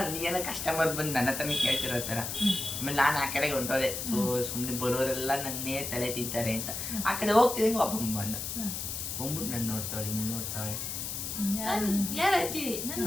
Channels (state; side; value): noise; left; hiss, 4 dB below the sound